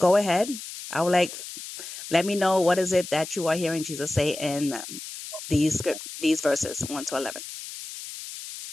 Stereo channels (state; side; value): noise; left; hiss, 11 dB below the sound